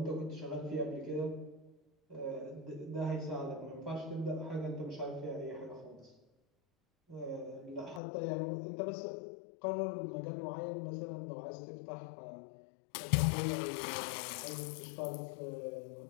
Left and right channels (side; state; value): right; drops out; at 8.0 s